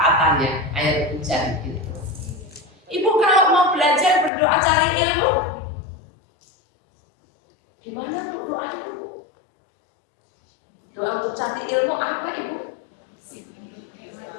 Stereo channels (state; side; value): drops out; right; at 4.3 s